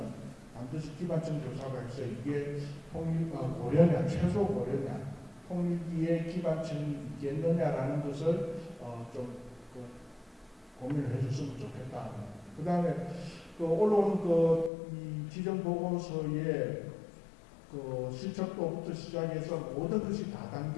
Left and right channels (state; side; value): drops out; right; at 14.7 s